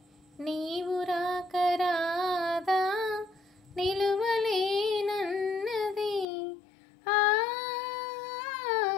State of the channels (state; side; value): drops out; right; at 6.2 s